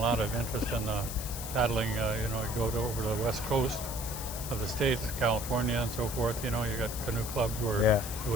of interest in paddling. You know, you go over to the west coast of the states, California and so forth. You know, you got canoe clubs where Yeah. you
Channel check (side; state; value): left; noise; hiss, 8 dB below the sound